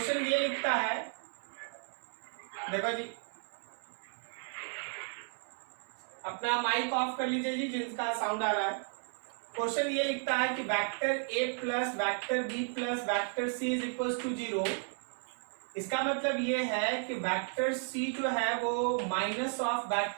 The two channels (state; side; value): silent; left; 55 dB below the other